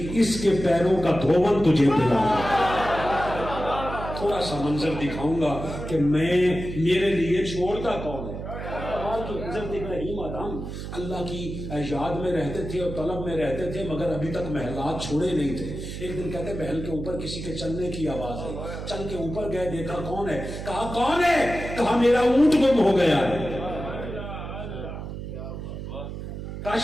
اس کے پیروں کا دھون تجھے پلاؤں گا، تھوڑا سا منظر دکھاؤں گا کہ میرے لیے چھوڑتا کون ہے۔ حضرت ابراہیم آدم اللہ کی یاد میں رہتے تھے اور طلب میں رہتے تھے، مگر ابھی تک محلات چھوڑے نہیں تھے۔ ایک دن کہتے محل کے اوپر کسی کے چلنے کی آواز آئی، چل کے اوپر گئے، دیکھا کون ہے؟ کہا کون ہے؟ کہا میرا اونٹ گم ہو گیا ہے۔ کہا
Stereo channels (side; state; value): right; noise; hum, 8 dB below the sound